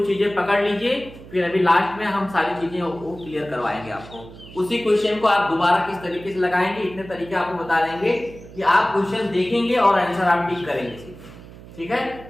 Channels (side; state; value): right; noise; hum, 18 dB below the sound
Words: चीजें पकड़ लीजिए, फिर अभी लास्ट में हम सारी चीजें वो क्लियर करवाएंगे आपको। उसी क्वेश्चन को आप दोबारा किस तरीके से लगाएंगे, इतने तरीके आपको बता देंगे कि आप क्वेश्चन देखेंगे और आंसर आप टिक करेंगे। ठीक है,